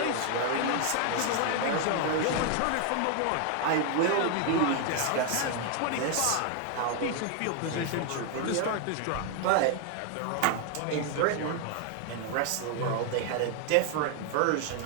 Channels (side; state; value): both; different; correlation 0.00